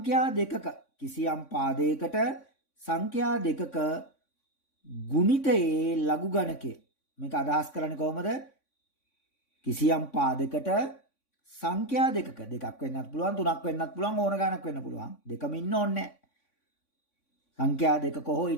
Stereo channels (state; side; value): late; right; 3.5 ms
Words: සංඛ්‍යා දෙකක ගුණිතයේ ලඝු ගණකය. මේක අදහස් කරන්නේ කොහොමද? කිසියම් පාදයකට සංඛ්‍යා දෙකක දෙකක් වෙන්නත් පුළුවන්, තුනක් වෙන්නත් පුළුවන්, ඕන ගණක් වෙන්න පුළුවන්. දෙකම ඉන්න ඕනේ නැහැ. සංඛ්‍යා දෙකක හෝ